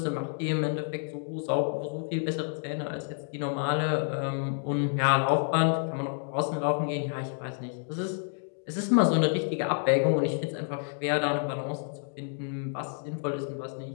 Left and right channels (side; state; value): right; silent; 58 dB below the other